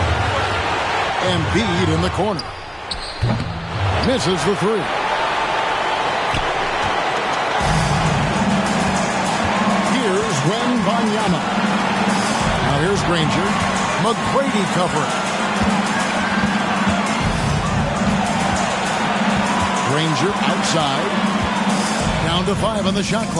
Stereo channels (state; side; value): identical; both; correlation 1.00